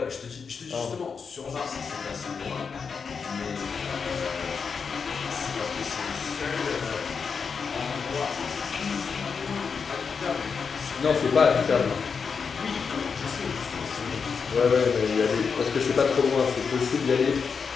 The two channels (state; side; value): quieter; right; 5.7 dB